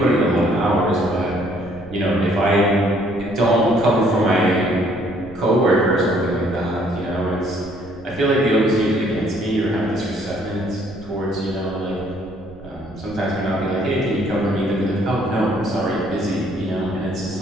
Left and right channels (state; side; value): noise; right; rumble, 20 dB below the sound